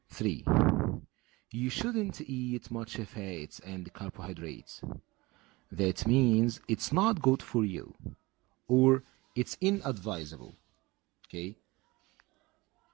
3. You shouldn't eat much fats and carbohydrates. That means it's not good for you. Or, it's inadvisable. Okay?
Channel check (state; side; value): quieter; left; 22.4 dB